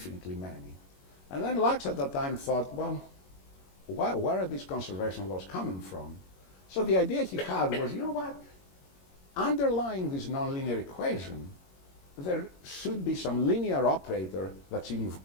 many. And then Lux at that time thought, well, where are these conservation laws coming from? So the idea he had was, you know what? Underlying this nonlinear equation, there should be some linear operator that's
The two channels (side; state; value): right; late; 21 ms